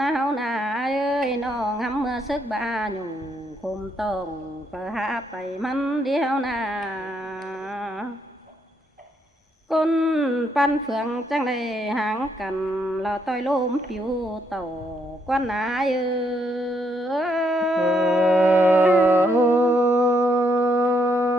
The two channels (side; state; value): both; normal; correlation 0.74